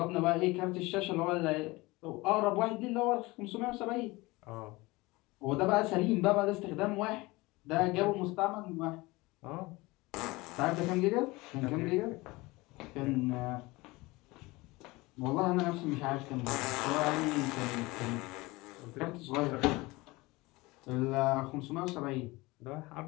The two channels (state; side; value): quieter; right; 22.2 dB